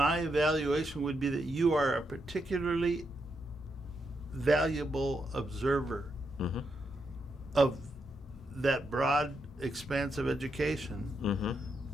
evaluation would be that you are a particularly valuable observer Mm-hmm. of that broad expanse of education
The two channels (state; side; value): normal; both; correlation 0.82